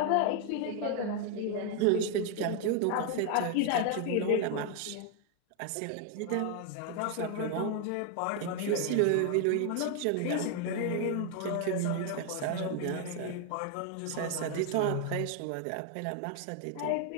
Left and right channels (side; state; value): both; different; correlation 0.00